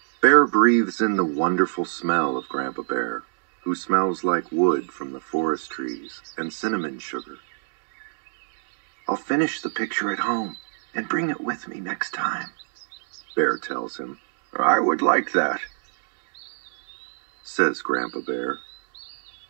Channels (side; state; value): left; silent; digital silence